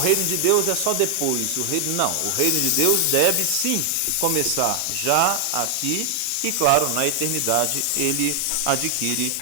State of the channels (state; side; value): different; both; correlation 0.00